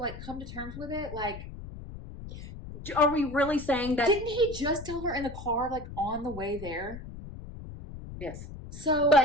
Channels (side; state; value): left; noise; rumble, 12 dB below the sound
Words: come to terms with it? Like, Are we really saying that? didn't he just tell her in the car like on the way there? Yes. So